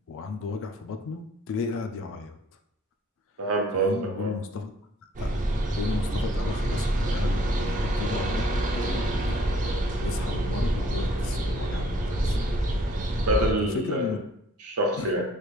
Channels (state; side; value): normal; both; correlation 0.59